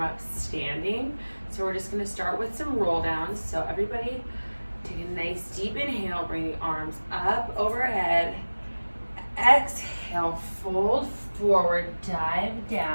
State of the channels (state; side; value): inverted; both; correlation -1.00